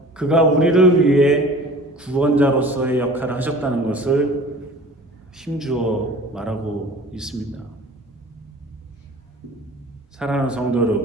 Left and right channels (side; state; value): both; normal; correlation 0.43